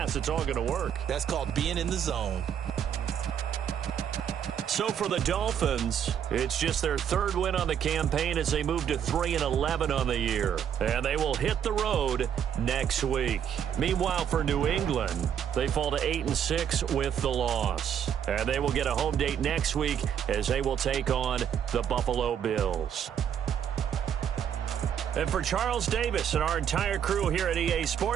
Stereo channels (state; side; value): quieter; left; 8.8 dB